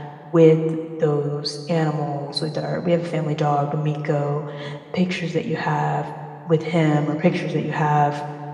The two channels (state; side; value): identical; both; correlation 1.00